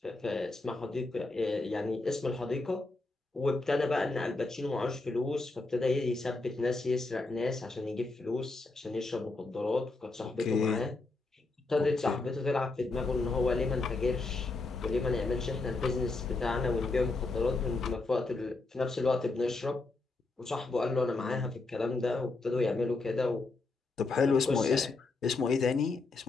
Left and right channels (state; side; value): quieter; right; 3.5 dB